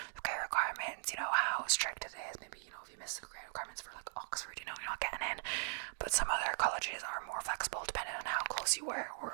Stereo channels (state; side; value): silent; left; digital silence